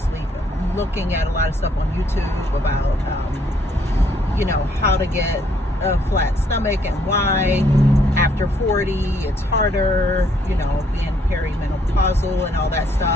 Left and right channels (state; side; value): normal; both; correlation 0.68